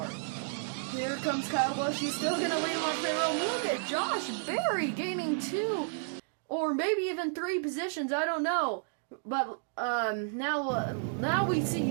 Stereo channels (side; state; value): left; silent; digital silence